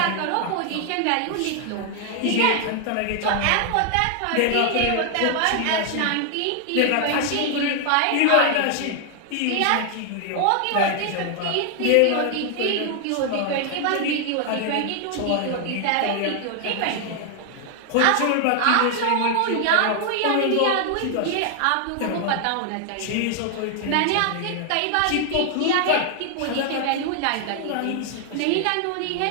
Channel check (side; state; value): both; different; correlation 0.00